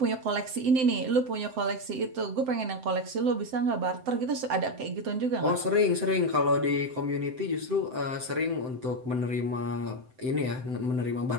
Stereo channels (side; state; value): left; late; 7.8 ms